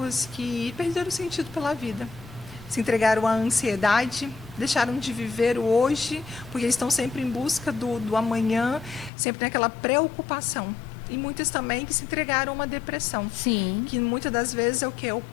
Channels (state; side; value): drops out; right; at 9.1 s